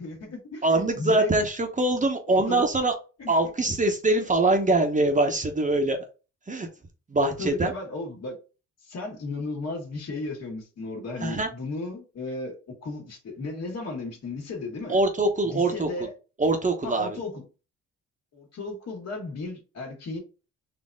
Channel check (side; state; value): both; normal; correlation 0.30